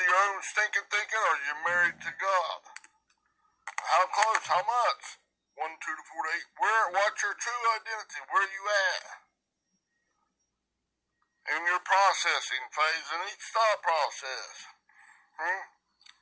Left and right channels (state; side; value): identical; both; correlation 1.00